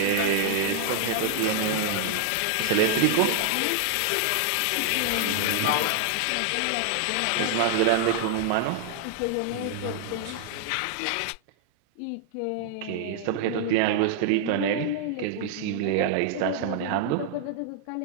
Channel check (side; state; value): both; different; correlation -0.01